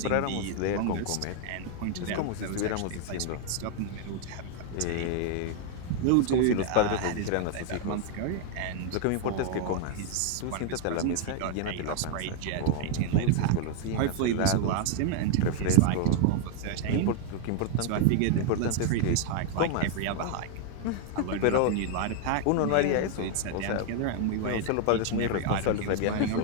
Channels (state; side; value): different; both; correlation 0.00